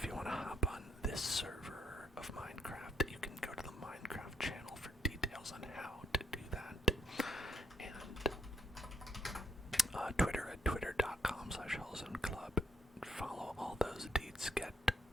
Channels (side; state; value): both; normal; correlation 0.74